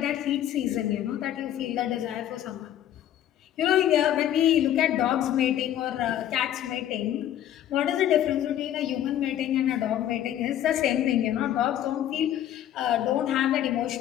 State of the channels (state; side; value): quieter; right; 11.5 dB